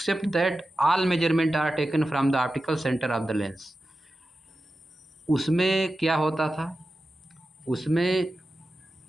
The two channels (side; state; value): both; normal; correlation 0.93